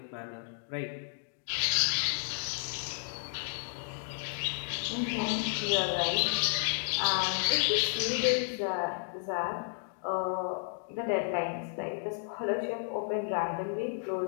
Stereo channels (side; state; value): right; silent; digital silence